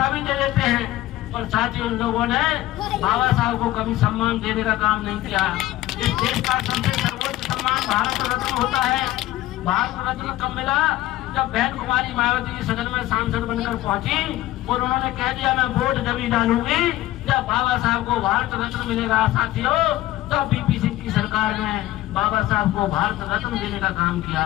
भी दे देते हैं, पर साथियों उन लोगों ने बाबा साहब को कभी सम्मान देने का काम नहीं किया। इस देश का सबसे सर्वोच्च सम्मान भारत रत्न होता है। भारत रत्न कब मिला? जब बहन कुमारी मायावती सदन में सांसद बनकर पहुंची और उन्होंने कह दिया मैं वोट जब डालूंगी जब बाबा साहब को भारत रत्न मिलेगा। साथियों, तब बीपी सिंह की सरकार ने बाबा साहब को भारत रत्न देने का काम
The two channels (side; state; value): right; quieter; 15.7 dB